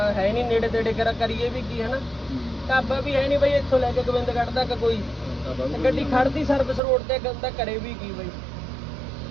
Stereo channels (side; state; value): left; drops out; at 6.8 s